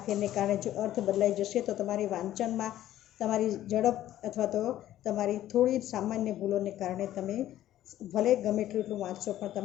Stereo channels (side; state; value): right; quieter; 13.1 dB